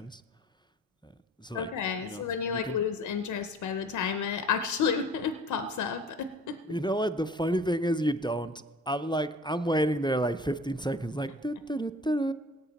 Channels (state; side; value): normal; both; correlation 0.45